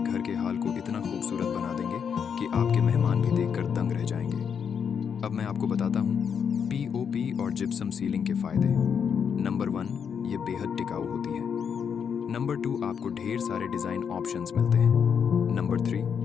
घर के हाल को इतना खूबसूरत बना देंगे कि आपके मेहमान भी देखकर दंग रह जाएंगे। अब मैं आपको बताता हूँ पीओपी और जिप्सम सीलिंग के फ़ायदे। नंबर 1, ये बेहद टिकाऊ होती है। नंबर 2, आपको ढेर सारे डिज़ाइन ऑप्शंस मिलते हैं। नंबर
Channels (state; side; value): quieter; right; 7.1 dB